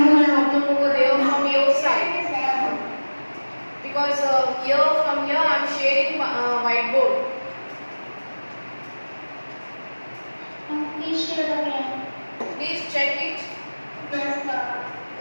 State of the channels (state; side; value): inverted; both; correlation -1.00